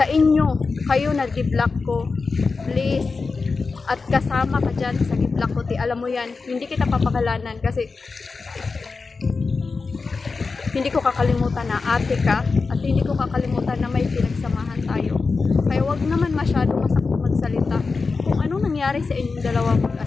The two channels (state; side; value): quieter; right; 4.3 dB